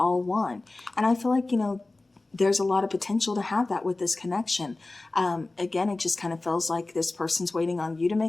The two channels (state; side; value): quieter; right; 3.1 dB